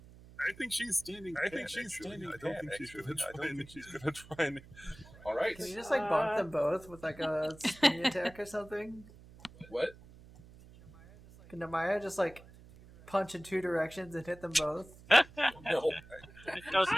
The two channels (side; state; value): right; noise; hum, 21 dB below the sound